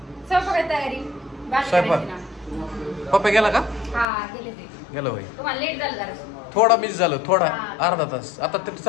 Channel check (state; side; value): drops out; right; at 4.0 s